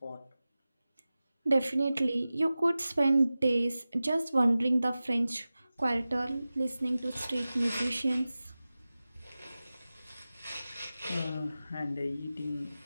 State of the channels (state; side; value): inverted; both; correlation -0.96